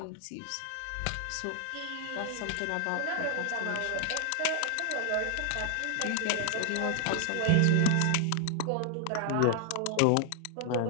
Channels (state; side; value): different; both; correlation 0.00